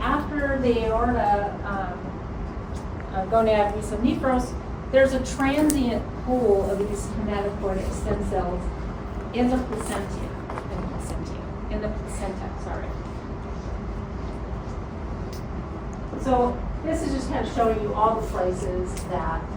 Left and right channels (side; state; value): both; identical; correlation 1.00